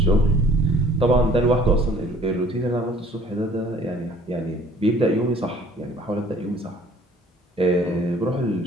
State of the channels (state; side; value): normal; both; correlation 0.54